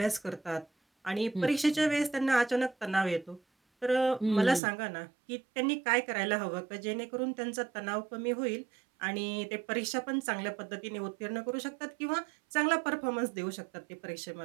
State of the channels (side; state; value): left; drops out; at 4.6 s